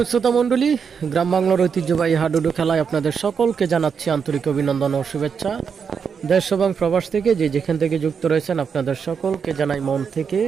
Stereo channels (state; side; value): quieter; left; 6.4 dB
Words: শ্রোতা মণ্ডলী, গ্রাম বাংলার ঐতিহ্যবাহী হাডুডু খেলায় আপনাদের সকলকে জানাচ্ছি আন্তরিক অভিনন্দন ও শুভেচ্ছা। দেশ এবং প্রবাস থেকে যে যেখান থেকে যুক্ত রয়েছেন আপনাদের সকলকে জানাই মন থেকে